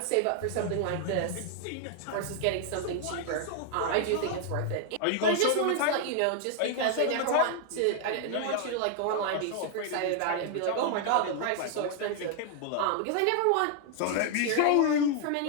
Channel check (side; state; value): both; different; correlation 0.00